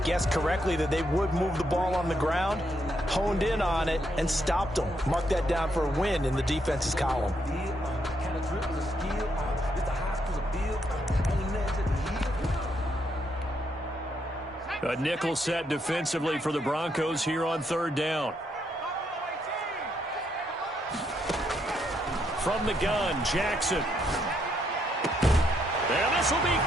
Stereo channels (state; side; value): normal; both; correlation 0.76